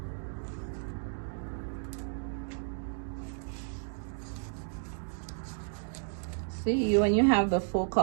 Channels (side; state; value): left; silent; digital silence